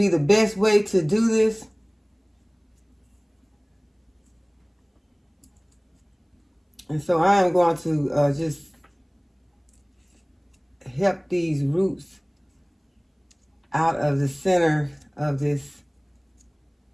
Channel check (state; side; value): identical; both; correlation 1.00